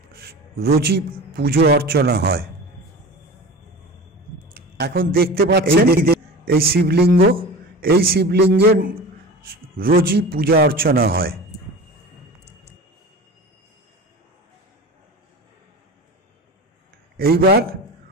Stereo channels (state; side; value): normal; both; correlation 0.34